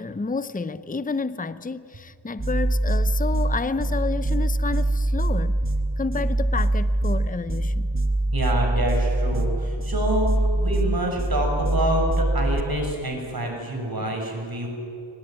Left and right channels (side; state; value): both; normal; correlation 0.70